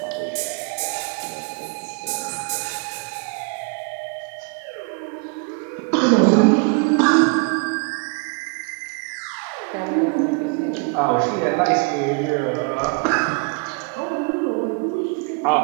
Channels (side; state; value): left; quieter; 32.5 dB